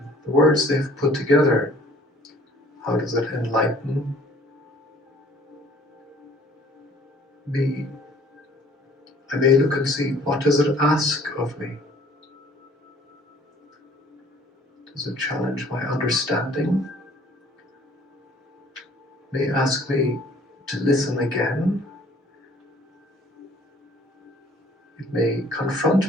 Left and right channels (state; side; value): normal; both; correlation 0.55